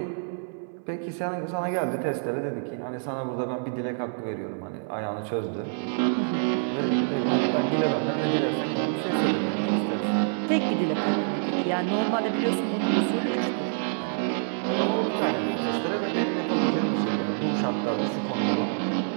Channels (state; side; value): silent; left; 58 dB below the other